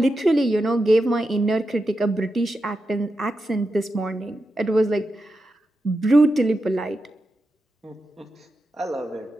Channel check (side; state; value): both; normal; correlation 0.88